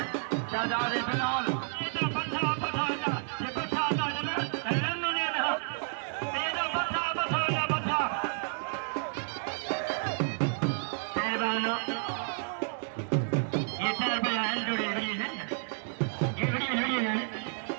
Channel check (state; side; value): silent; left; 57 dB below the other